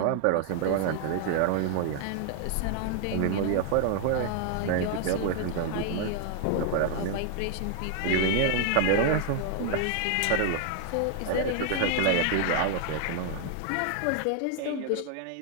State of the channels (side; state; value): both; different; correlation 0.00